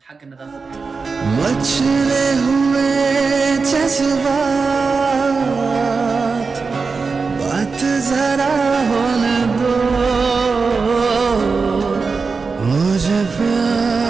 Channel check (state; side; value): quieter; left; 4.6 dB